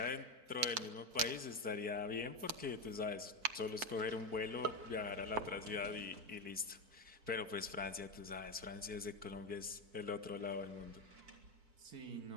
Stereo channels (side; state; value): left; late; 4.5 ms